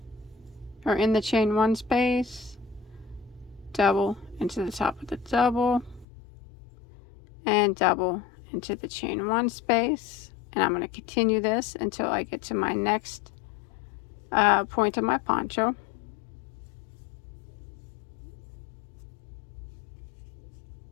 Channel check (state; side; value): drops out; right; at 6.1 s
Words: or in the chain 1 space, double into the top of the double, and double into the chain 1 space. And I'm going to continue this until I get to my next point of my poncho.